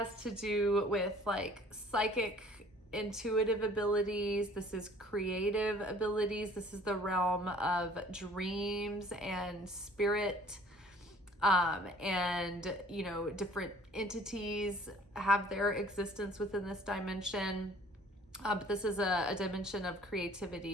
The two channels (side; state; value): both; normal; correlation 0.52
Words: to do with like psychic, intuitive abilities. This is creative abilities. This is the realm of dreams and spirit, and different entities have their existence within this dimension. But this is a dimension of